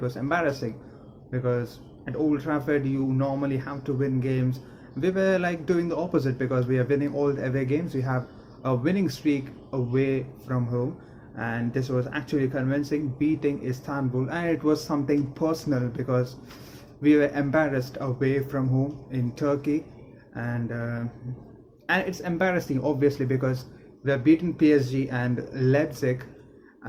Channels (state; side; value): identical; both; correlation 1.00